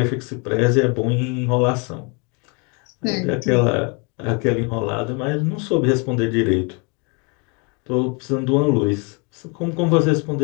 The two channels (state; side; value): quieter; right; 32.6 dB